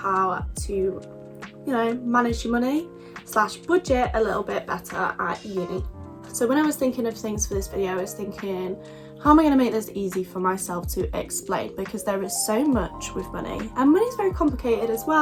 to, manage your money / budget a little bit better at uni. So when I was thinking of things for this video, I was thinking, how am I going to make this easy for myself to explain? Because there is so much with money, and money is very complicated as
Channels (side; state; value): both; identical; correlation 1.00